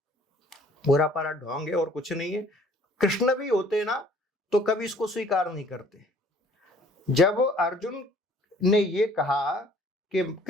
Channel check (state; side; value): normal; both; correlation 0.56